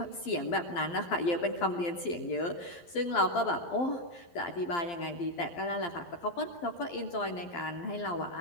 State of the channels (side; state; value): right; late; 12 ms